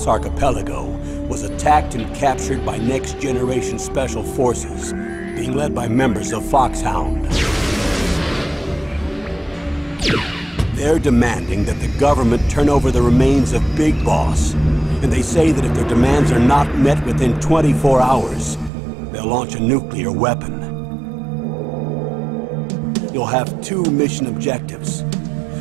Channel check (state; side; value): drops out; left; at 18.7 s